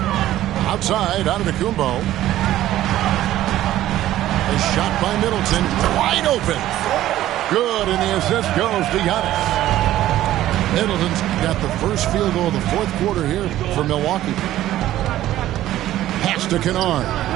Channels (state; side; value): quieter; left; 13.8 dB